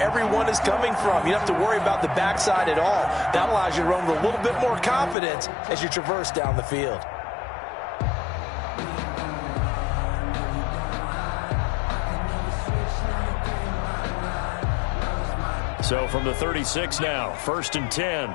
everyone is coming from. You don't have to worry about the backside at all. That allows you to run with a little bit more confidence as you traverse down the field. So from the 36 now, first and 10.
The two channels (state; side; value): drops out; right; at 5.2 s